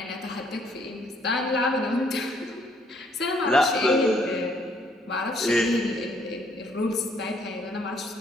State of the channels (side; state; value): both; normal; correlation 0.66